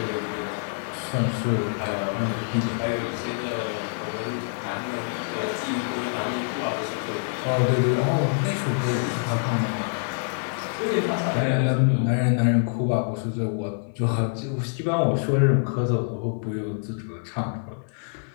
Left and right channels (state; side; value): silent; right; 61 dB below the other